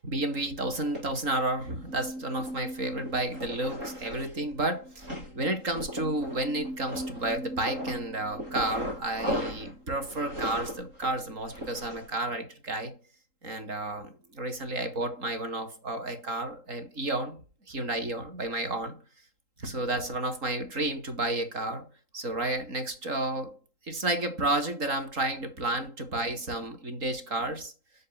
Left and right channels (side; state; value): left; late; 3.8 ms